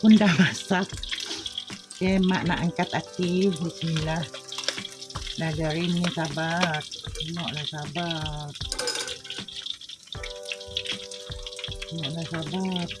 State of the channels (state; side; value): identical; both; correlation 1.00